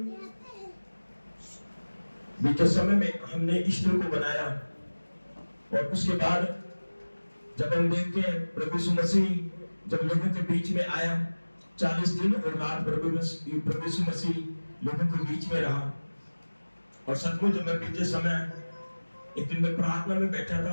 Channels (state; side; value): inverted; both; correlation -1.00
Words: बीते समय में हमने ईस्टर को बनाया और उसके बाद जब हम देखते हैं प्रभु यीशु मसीह जब लोगों के बीच में आया, 40 दिन और रात प्रभु यीशु मसीह लोगों के बीच में रहा। और सचमुच जब मैं बीते समय एक दिन मैं प्रार्थना में बैठा था